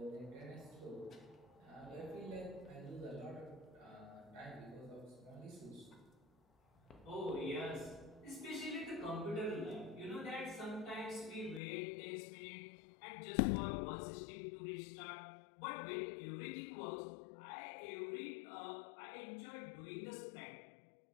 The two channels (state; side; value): drops out; right; at 11.6 s